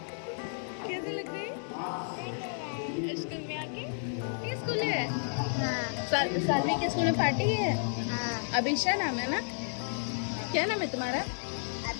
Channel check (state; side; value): silent; right; digital silence